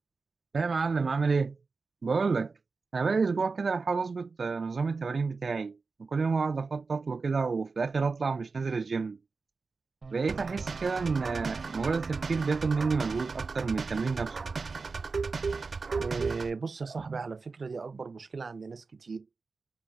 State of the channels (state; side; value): quieter; left; 4.3 dB